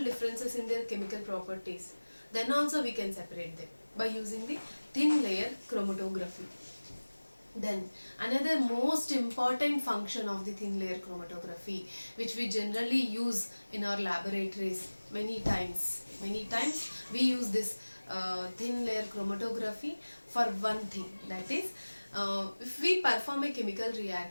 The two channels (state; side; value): inverted; both; correlation -1.00